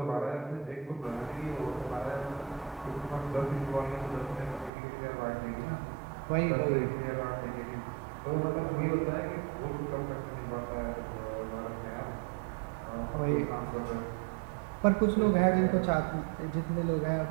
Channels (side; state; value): left; drops out; at 4.7 s